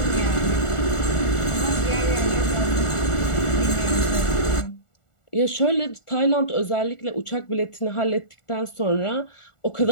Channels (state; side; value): late; right; 1.4 ms